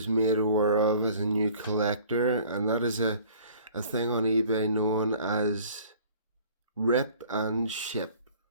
made aware of as a new collector, and that is a thing on eBay known as Rip and Ship.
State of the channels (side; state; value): both; inverted; correlation -0.51